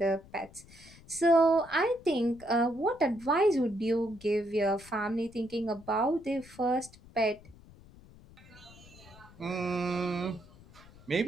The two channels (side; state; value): left; noise; rumble, 22 dB below the sound